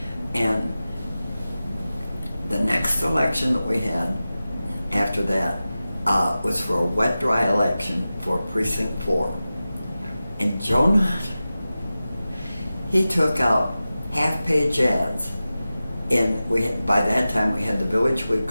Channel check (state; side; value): inverted; both; correlation -0.95